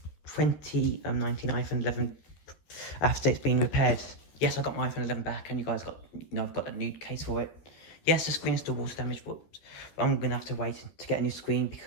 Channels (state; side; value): late; right; 13 ms